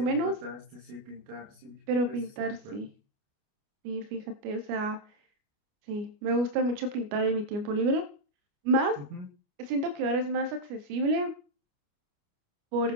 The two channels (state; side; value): late; left; 29 ms